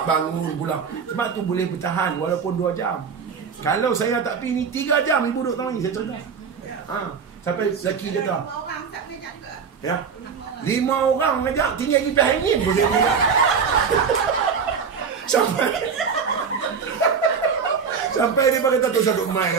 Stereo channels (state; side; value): quieter; left; 6.1 dB